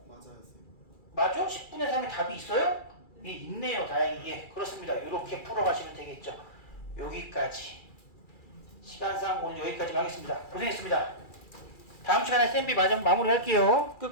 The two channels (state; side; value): late; right; 2.3 ms